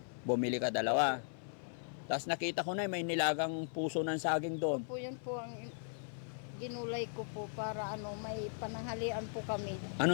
Bumili ka 2. Tapos nakita ko na may nilagang puso ng saging doon. Po yun po ang ginulay ko po para may pananghalian po kami.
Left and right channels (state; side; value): silent; right; 52 dB below the other